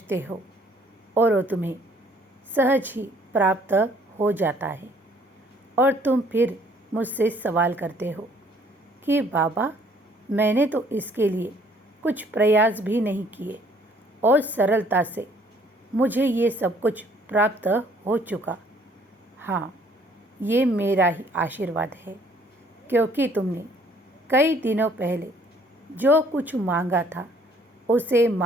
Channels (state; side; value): normal; both; correlation 0.61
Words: हो और वो तुम्हें सहज ही प्राप्त हो जाता है और तुम फिर मुझसे सवाल करते हो कि बाबा, मैंने तो इसके लिए कुछ प्रयास भी नहीं किए और सरलता से मुझे ये सब कुछ प्राप्त हो चुका। हाँ, ये मेरा ही आशीर्वाद है, क्योंकि तुमने कई दिनों पहले जो कुछ मांगा था उसे